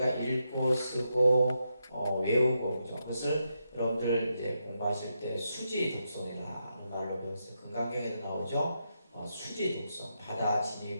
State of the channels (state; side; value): inverted; both; correlation -0.83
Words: 읽고 쓰고 외우고, 그죠? 그것을 여러분들 이제 공부하실 때 수지 독송이라는 말로 배웠어요. 금강경에도 나오죠? 수지 독송. 받아